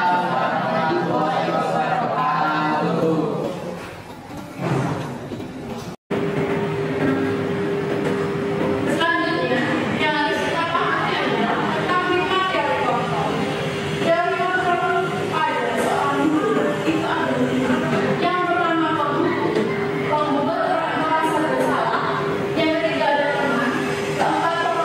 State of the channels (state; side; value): identical; both; correlation 1.00